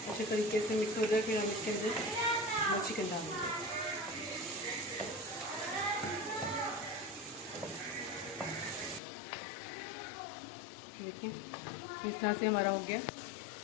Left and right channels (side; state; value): right; drops out; at 9.0 s